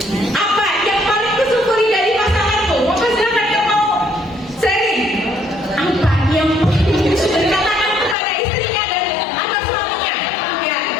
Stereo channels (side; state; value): right; drops out; at 8.2 s